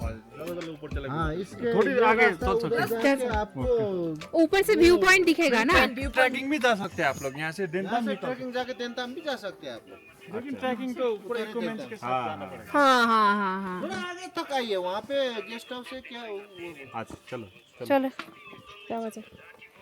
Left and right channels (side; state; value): both; identical; correlation 1.00